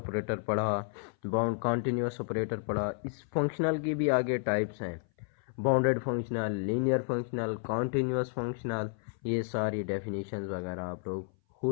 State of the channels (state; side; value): silent; right; 57 dB below the other